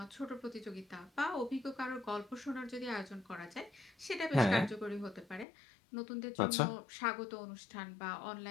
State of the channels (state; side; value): drops out; right; at 5.5 s